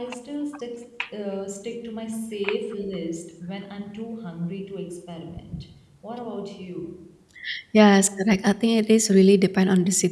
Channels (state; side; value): identical; both; correlation 1.00